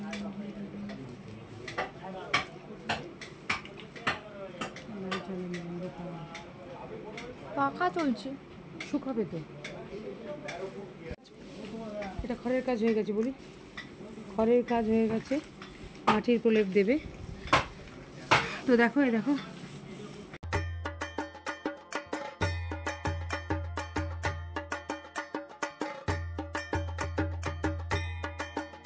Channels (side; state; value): both; identical; correlation 1.00